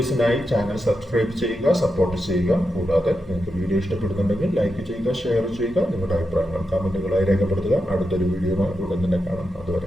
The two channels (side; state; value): both; normal; correlation 0.87